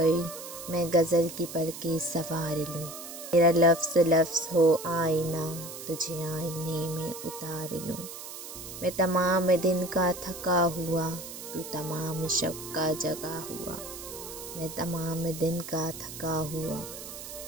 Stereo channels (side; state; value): right; noise; hiss, 11 dB below the sound